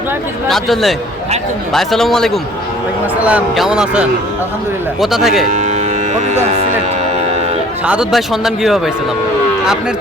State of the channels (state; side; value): normal; both; correlation 0.52